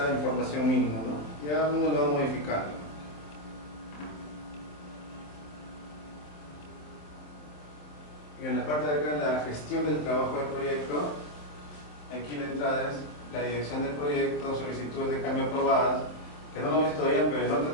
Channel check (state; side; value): late; right; 26 ms